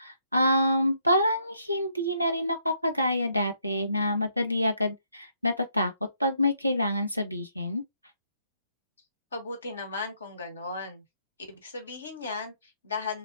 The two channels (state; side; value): inverted; both; correlation -0.72